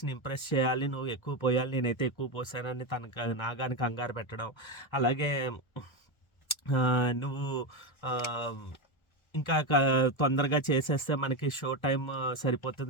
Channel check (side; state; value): right; late; 1.4 ms